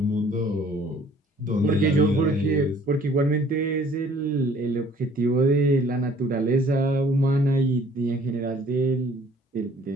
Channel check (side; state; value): both; normal; correlation 0.56